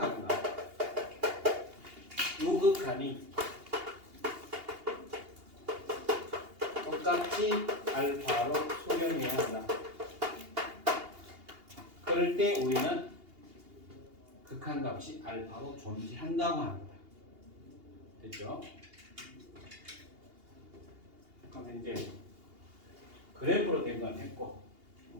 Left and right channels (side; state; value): left; late; 2.8 ms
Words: 우극한이 똑같이 알파로 수렴해야 한다. 그럴 때 우리는 극한값이 알파로 존재한다고 합니다. 됐죠? 그럼 이제 그래프로 된 건 했고